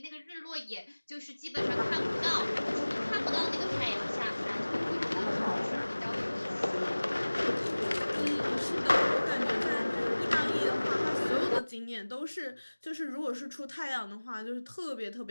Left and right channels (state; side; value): inverted; both; correlation -1.00